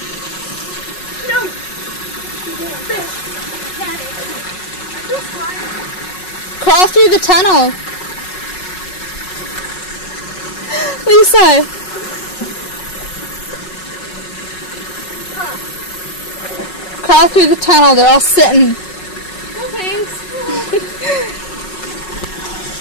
Fish! I had it. I just fine. Crawl through the tunnel. Lisa. Crawl through the tunnel. They're all sitting. No thanks.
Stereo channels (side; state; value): right; late; 5.4 ms